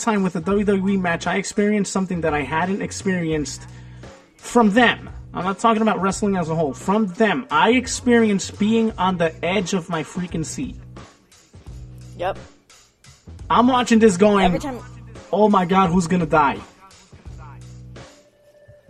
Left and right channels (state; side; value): identical; both; correlation 1.00